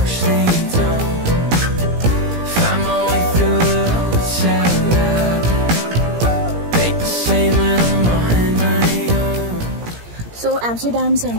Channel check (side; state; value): left; late; 17 ms